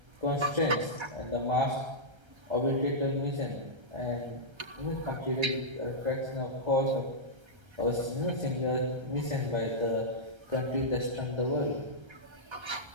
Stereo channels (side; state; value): left; late; 1.3 ms